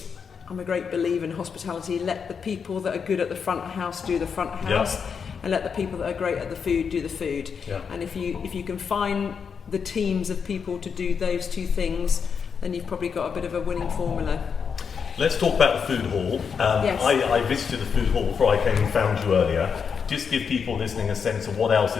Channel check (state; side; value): quieter; right; 6.4 dB